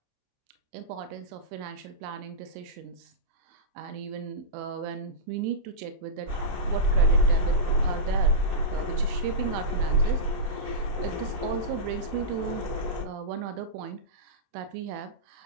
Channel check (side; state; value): left; late; 27 ms